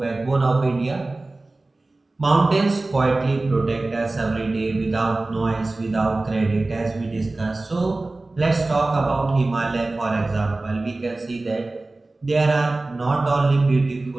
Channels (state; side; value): quieter; left; 3.1 dB